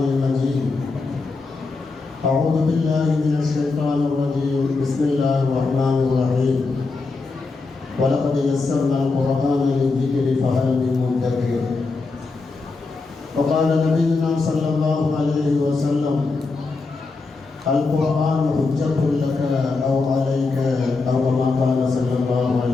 المجيد أعوذ بالله من الشيطان الرجيم بسم الله الرحمن الرحيم ولقد يسرنا القرآن للذكر فهل من مدكر. وقال نبينا صلى الله عليه وسلم القرآن حجة لك أو عليك أو كما قال صلى الله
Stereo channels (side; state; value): right; quieter; 3.9 dB